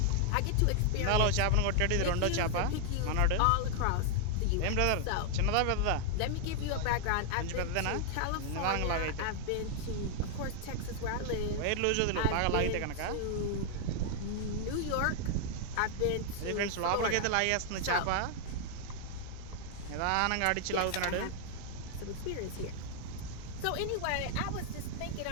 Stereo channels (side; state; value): both; different; correlation 0.00